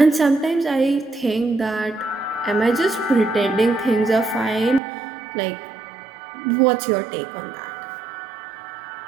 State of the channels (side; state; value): left; drops out; at 4.8 s